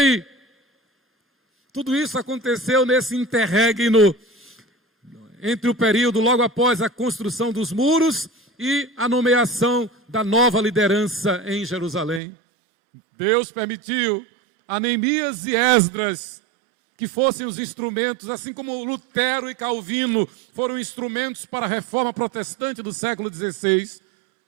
Tudo isso aconteceu nesse interregno, entre o período logo após a construção dos muros e a nomeação da nova liderança em Jerusalém. Deus permitiu a Neemias e Esdras que fossem os instrumentos, assim como Lutero e Calvino foram instrumentos para a reforma protestante do século XVI.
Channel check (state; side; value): drops out; left; at 12.2 s